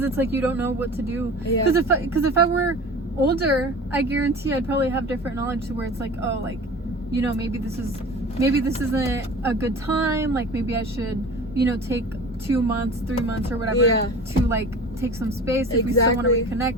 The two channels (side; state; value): both; normal; correlation 0.38